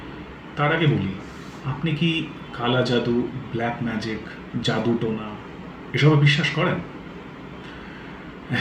তার আগে বলি, আপনি কি কালা জাদু, ব্ল্যাক ম্যাজিক, জাদু টোনা এসবে বিশ্বাস করেন?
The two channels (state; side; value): identical; both; correlation 1.00